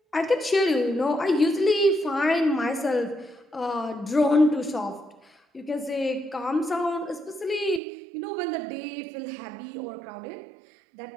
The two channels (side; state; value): left; drops out; at 7.8 s